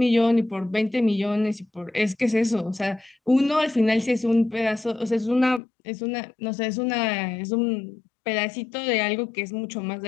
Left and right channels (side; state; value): right; drops out; at 5.6 s